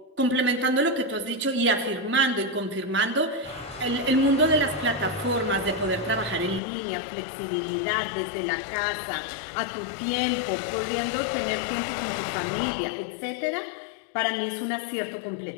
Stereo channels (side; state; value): right; drops out; at 6.6 s